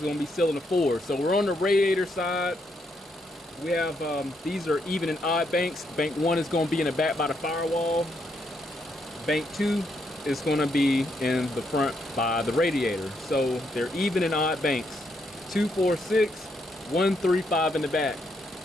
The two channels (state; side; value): normal; both; correlation 0.77